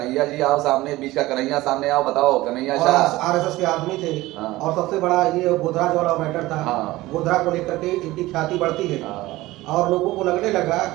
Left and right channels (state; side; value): quieter; left; 18.2 dB